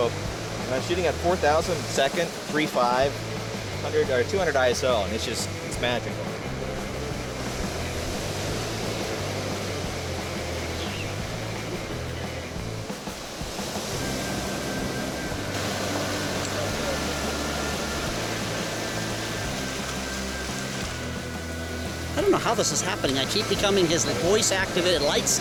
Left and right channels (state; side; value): identical; both; correlation 1.00